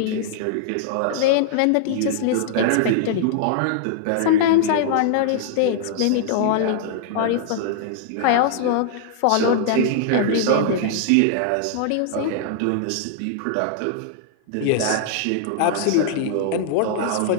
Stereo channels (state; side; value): different; both; correlation -0.01